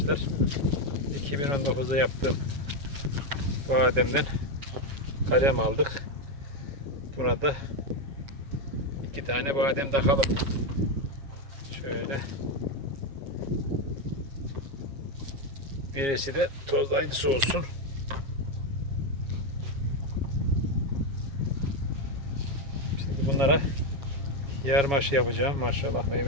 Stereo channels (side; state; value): left; late; 7.3 ms